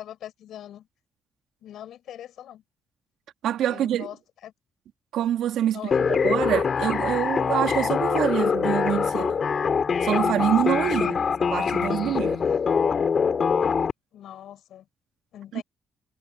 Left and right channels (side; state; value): both; normal; correlation 0.71